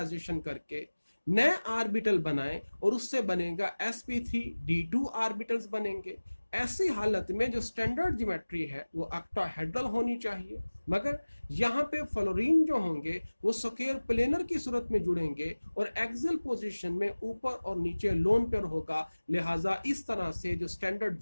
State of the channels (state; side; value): inverted; both; correlation -1.00